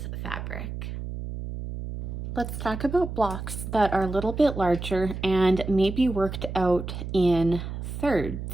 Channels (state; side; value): noise; right; hum, 7 dB below the sound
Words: fabric. Let's talk about blocks that are a little bit larger and maybe worked out in